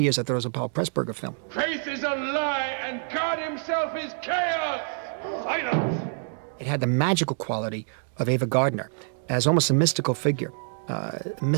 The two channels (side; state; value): left; silent; digital silence